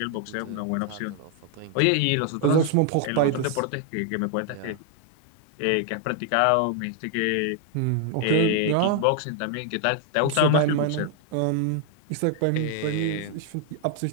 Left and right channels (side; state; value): both; different; correlation 0.00